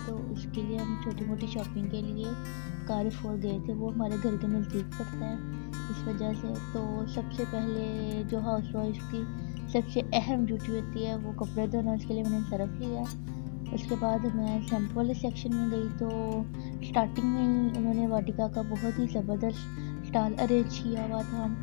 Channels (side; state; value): right; silent; 56 dB below the other